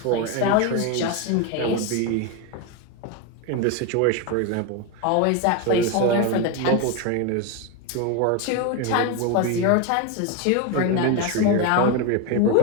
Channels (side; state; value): both; different; correlation 0.02